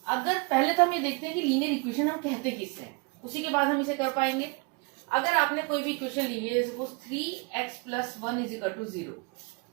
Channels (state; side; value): quieter; left; 29.2 dB